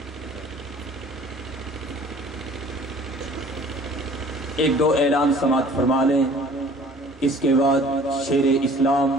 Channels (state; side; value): normal; both; correlation 0.50